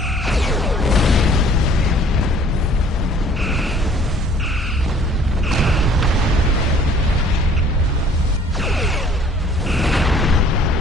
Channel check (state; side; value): normal; both; correlation 0.55